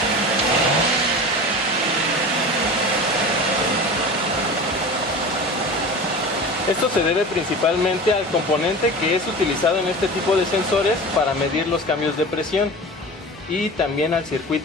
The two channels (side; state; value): both; normal; correlation 0.33